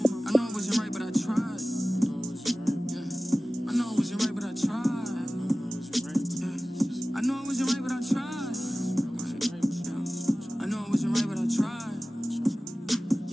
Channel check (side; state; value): both; normal; correlation 0.97